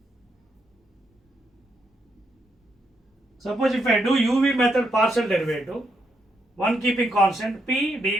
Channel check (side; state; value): both; normal; correlation 0.79